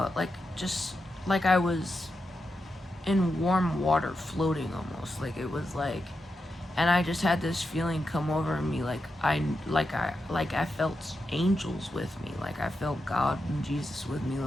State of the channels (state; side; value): normal; both; correlation 0.87